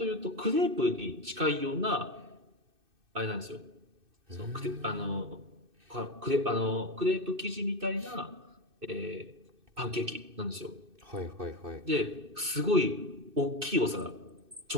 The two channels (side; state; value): left; late; 2.6 ms